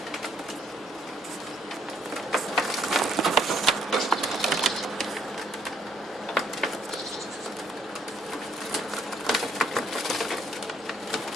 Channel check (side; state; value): both; normal; correlation 0.67